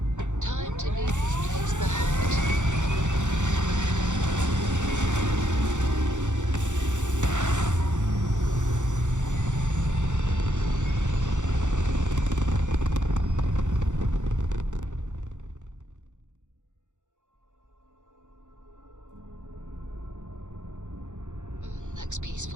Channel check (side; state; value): left; late; 0.85 ms